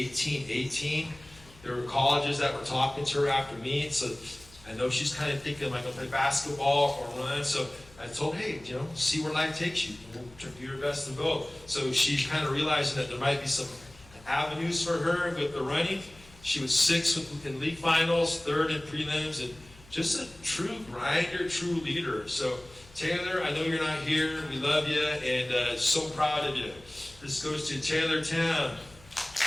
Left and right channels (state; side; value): noise; left; hum, 24 dB below the sound